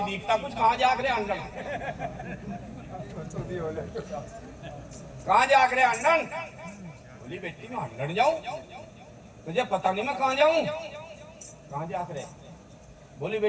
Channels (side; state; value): both; identical; correlation 1.00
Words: दिखता कुछ, कहाँ जाग रहे अंडन, कहाँ जाग रहे अंडन। बोली बेटी मैं अंडन जाऊं, तुझे पता नहीं मैं कहाँ जाऊं। कहाँ जाग रहे? बोली